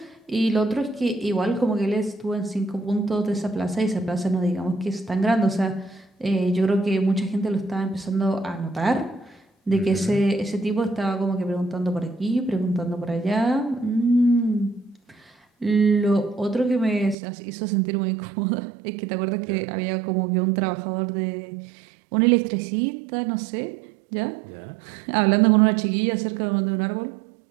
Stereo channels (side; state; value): left; drops out; at 17.2 s